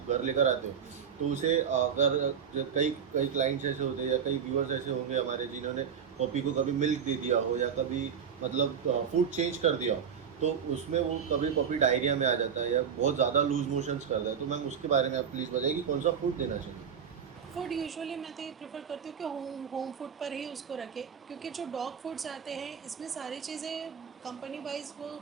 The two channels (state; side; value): quieter; left; 7.5 dB